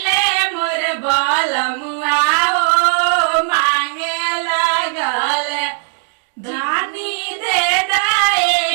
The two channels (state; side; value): silent; left; digital silence